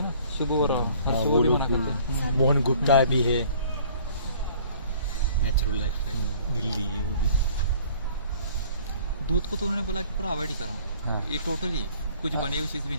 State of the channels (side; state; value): both; inverted; correlation -0.53